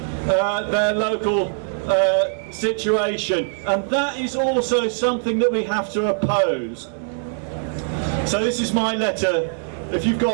their local situation, and that is also something that we have to oppose. So this is my letter. If you've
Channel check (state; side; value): silent; left; 64 dB below the other